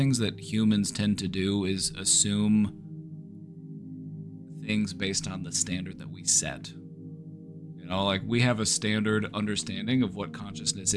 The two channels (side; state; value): both; identical; correlation 1.00